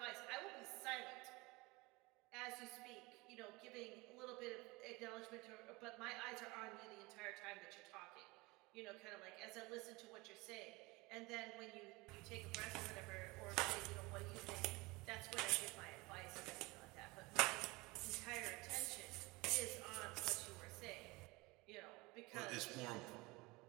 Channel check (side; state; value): left; quieter; 23.6 dB